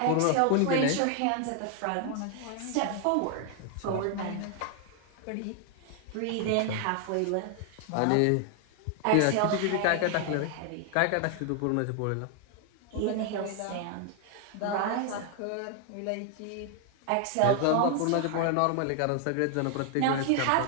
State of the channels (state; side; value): different; both; correlation 0.00